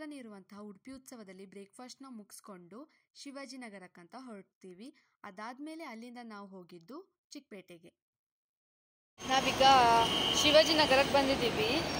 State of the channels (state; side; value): identical; both; correlation 1.00